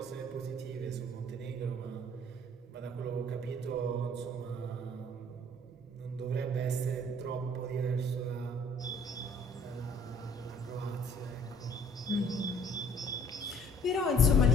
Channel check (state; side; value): normal; both; correlation 0.56